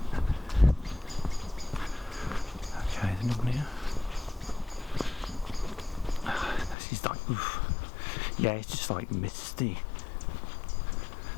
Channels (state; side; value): drops out; right; at 6.8 s